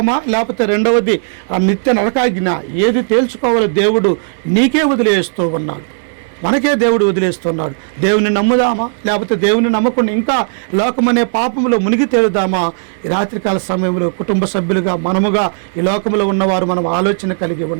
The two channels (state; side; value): silent; left; digital silence